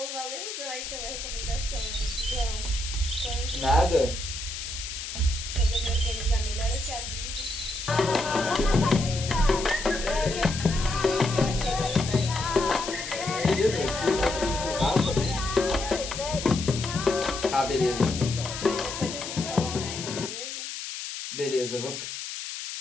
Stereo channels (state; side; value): noise; left; hiss, 7 dB below the sound